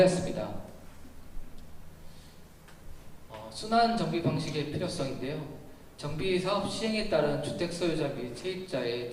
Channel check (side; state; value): both; identical; correlation 1.00